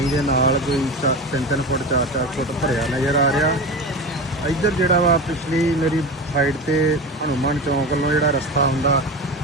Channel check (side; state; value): both; normal; correlation 0.26